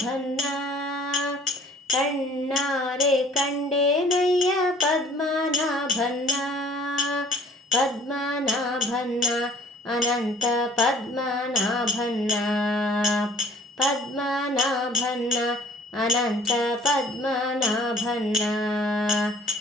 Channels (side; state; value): both; normal; correlation 0.52